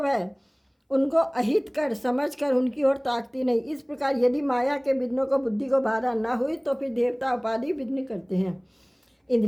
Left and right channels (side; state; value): both; identical; correlation 1.00